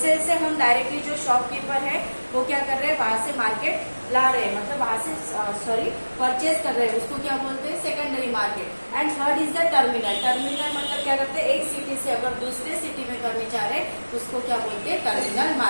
से हम डायरेक्टली जो शॉपकीपर है वो क्या कर रहे हैं, वहां से मार्केट ला रहे हैं, मतलब वहां से परचेज कर रहे हैं, उसको क्या बोलते हैं, secondary market. And third is the terminal. Terminal मतलब क्या करते हैं, एक सिटी से अगर दूसरे सिटी में करने चाह रहे हैं उसको क्या बोलते हैं, टर्मिनल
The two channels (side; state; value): both; inverted; correlation -1.00